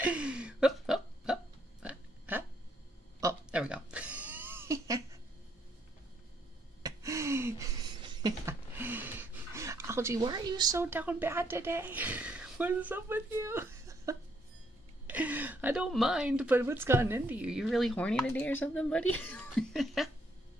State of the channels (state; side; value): normal; both; correlation 0.71